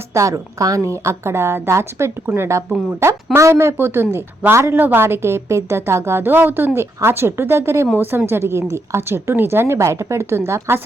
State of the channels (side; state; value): both; normal; correlation 0.79